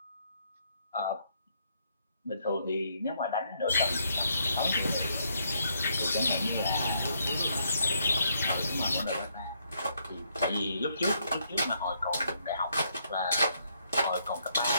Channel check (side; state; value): both; inverted; correlation -0.73